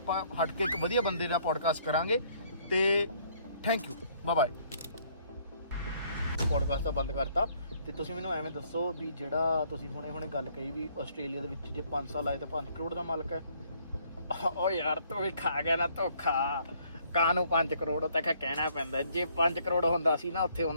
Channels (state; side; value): inverted; both; correlation -0.64